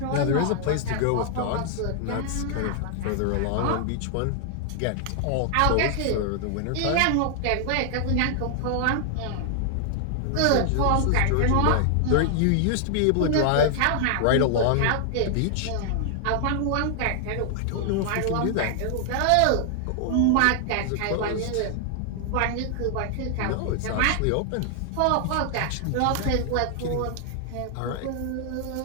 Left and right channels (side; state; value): both; different; correlation 0.00